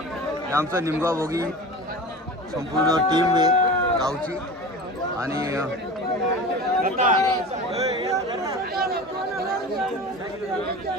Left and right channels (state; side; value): normal; both; correlation 0.34